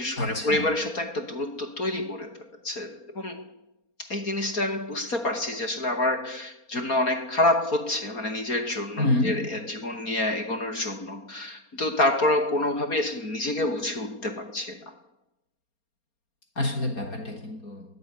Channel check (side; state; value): right; late; 4.3 ms